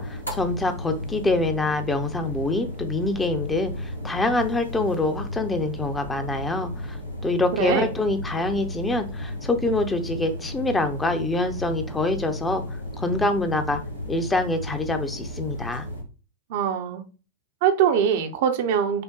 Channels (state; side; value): normal; both; correlation 0.33